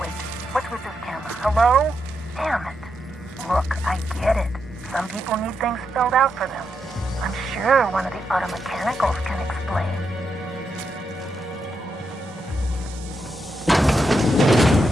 what's with this camera? Hello? Damn it. Look, I get it. Some people need things spelled out for them. I'm sure one of the auto mechanicals can explain.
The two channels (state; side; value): normal; both; correlation 0.83